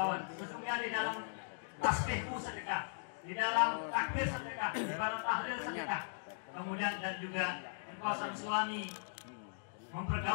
sesungguhnya di dalam tasbihmu sedekah, di dalam takbir sedekah, di dalam tahlil sedekah, kemudian dan juga engkau sang suami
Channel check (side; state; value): right; silent; digital silence